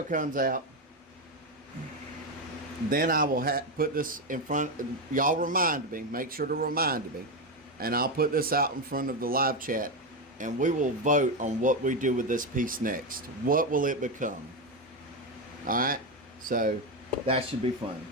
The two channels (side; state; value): both; normal; correlation 0.11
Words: comes out, then I will put this in front. Y'all remind me. Make sure to remind me. And I'll put this out in front of the live chat. And we will vote on what we do with this piece next. What will it become? Alright? So, that should be fun.